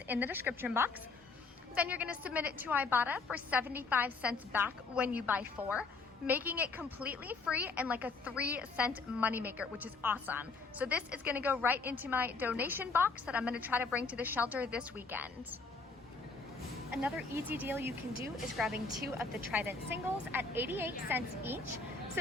in the description box. Then you're gonna submit it to Ibotta for 75 cents back when you buy 4, making it completely free and like a 3-cent moneymaker, which is awesome. So this is gonna go right into my donation box that I'm gonna try to bring to the shelter this weekend. Another easy deal you can do is grabbing 2 of the Trident singles at 88 cents each.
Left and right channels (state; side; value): quieter; right; 4.1 dB